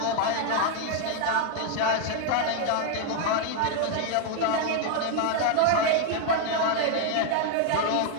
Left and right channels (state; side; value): different; both; correlation 0.01